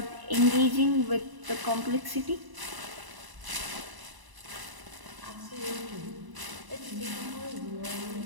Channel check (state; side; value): late; left; 1.0 ms